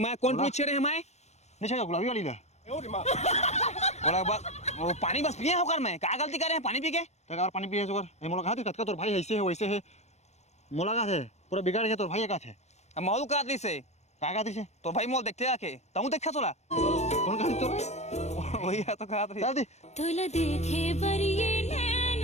कौन टूरी छेड़े मैं नहीं छेड़ा गुलाबी वाली ला बोला बस वो पानी बस पिए होकर मैं क्या गलती करे हैं पानी पी के तक और पानी पिए सुगर ए मोला कहा तक तोर भाई ऐसे है वैसे है मोला का है पूरा बिगाड़ के तोर भाई का थे अब मौल का दी से का दी से तो भाई मोल देखते आके तू देखा सोला कौन कहा तो वही है तो कहा चल दी तुल देखे बरिए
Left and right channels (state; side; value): late; right; 0.32 ms